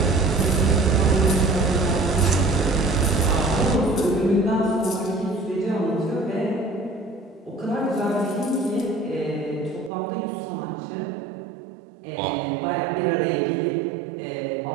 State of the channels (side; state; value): left; drops out; at 9.9 s